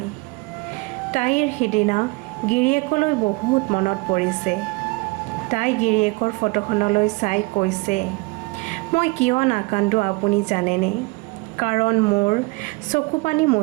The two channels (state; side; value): quieter; left; 26.0 dB